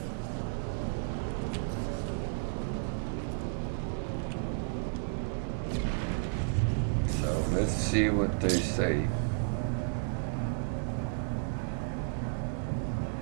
Let's see what they say.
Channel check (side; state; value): left; silent; digital silence